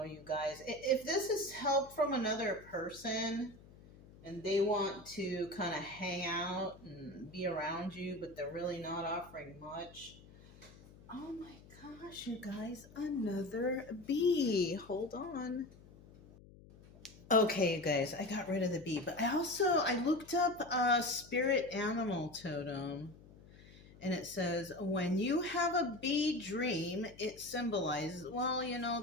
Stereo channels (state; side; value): noise; left; hum, 21 dB below the sound